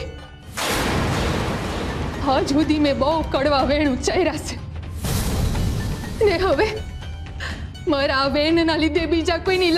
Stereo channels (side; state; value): both; identical; correlation 1.00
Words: આજ સુધી મેં બહુ કડવા વેણ ઉચ્ચાર્યા છે, ને હવે મારા આ વેણના લીધે બીજા કોઈની